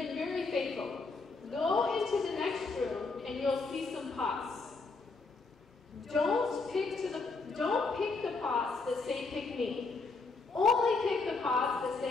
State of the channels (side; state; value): right; quieter; 4.0 dB